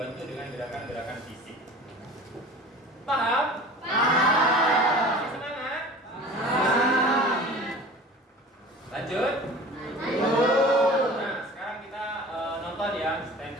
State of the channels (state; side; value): normal; both; correlation 0.40